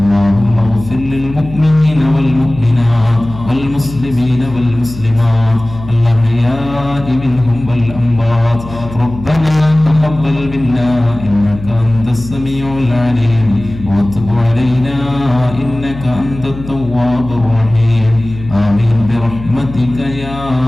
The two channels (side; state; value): left; noise; hum, 13 dB below the sound